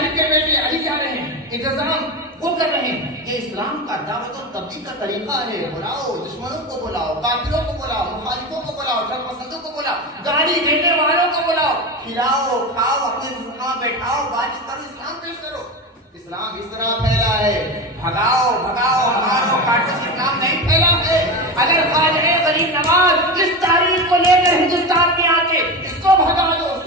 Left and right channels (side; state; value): both; normal; correlation 0.22